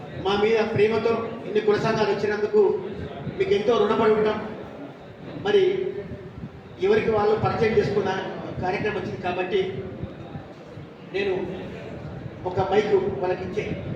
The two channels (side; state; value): both; identical; correlation 1.00